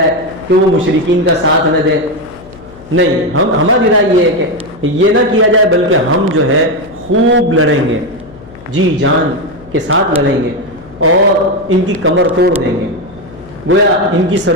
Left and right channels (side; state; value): left; noise; hum, 20 dB below the sound